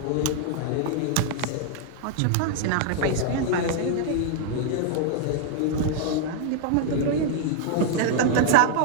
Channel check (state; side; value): different; both; correlation 0.00